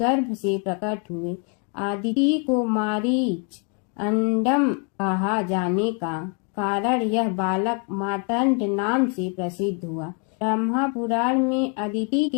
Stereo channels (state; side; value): quieter; right; 38.1 dB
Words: से प्रकट हुए। आदिति को मारीच अंडम कहा जाने का कारण यह बालक मार्तंड नाम से प्रसिद्ध हुआ। ब्रह्मा पुराण में अदिति